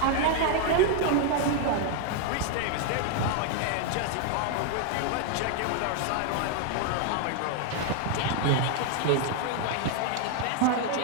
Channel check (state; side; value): different; both; correlation 0.00